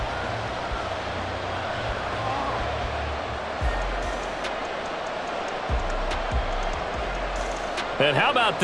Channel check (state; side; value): identical; both; correlation 1.00